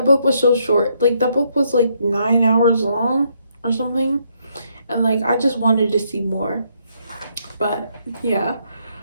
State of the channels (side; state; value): both; inverted; correlation -0.73